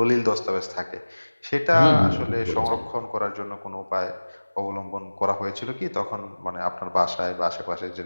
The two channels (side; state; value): both; inverted; correlation -1.00